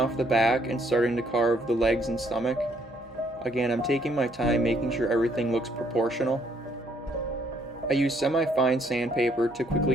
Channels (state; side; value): noise; left; hum, 27 dB below the sound